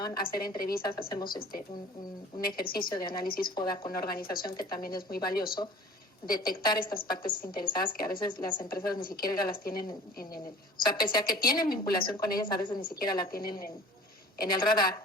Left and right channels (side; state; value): both; normal; correlation 0.45